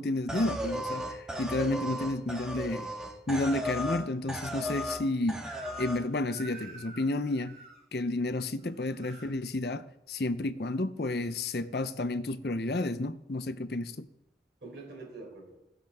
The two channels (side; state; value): both; normal; correlation 0.60